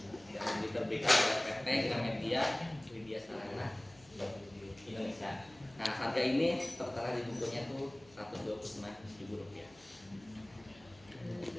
dan diterbitkan oleh PT Gramedia Widya Sarana Indonesia. Nah, harga ini tertera di bukunya tuh Rp129.000.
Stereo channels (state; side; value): noise; left; hum, 25 dB below the sound